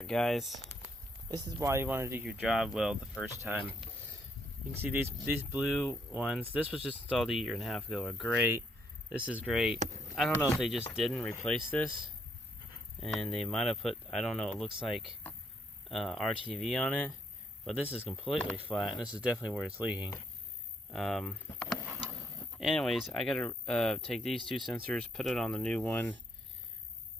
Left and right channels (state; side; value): normal; both; correlation 0.72